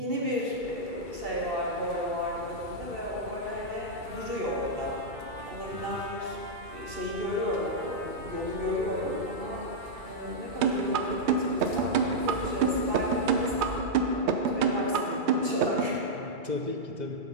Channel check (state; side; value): late; left; 2.3 ms